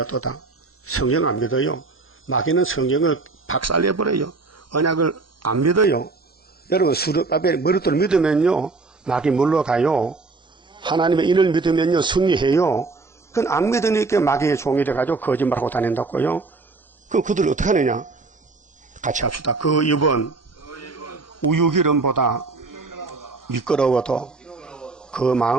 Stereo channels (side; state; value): left; quieter; 3.8 dB